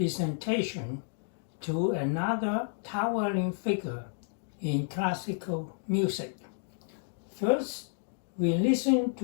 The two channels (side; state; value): right; silent; digital silence